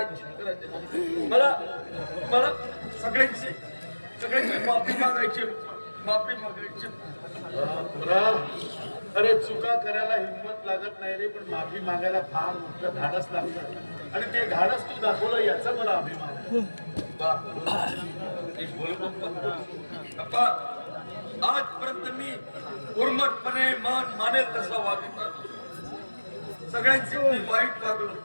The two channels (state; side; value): inverted; both; correlation -1.00